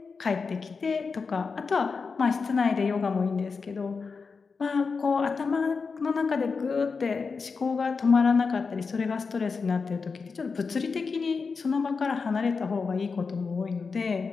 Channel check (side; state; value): right; quieter; 4.9 dB